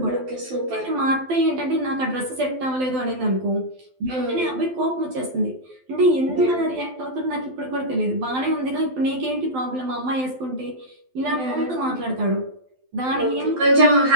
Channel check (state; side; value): late; left; 12 ms